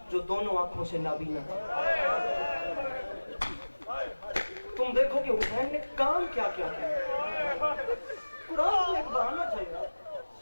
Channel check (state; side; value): inverted; both; correlation -1.00